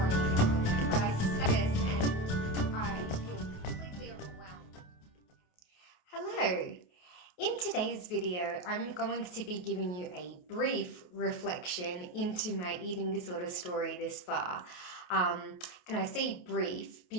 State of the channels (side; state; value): right; late; 28 ms